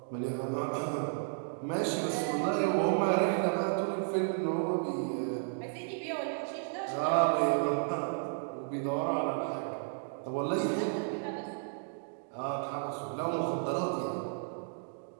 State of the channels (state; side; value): silent; left; digital silence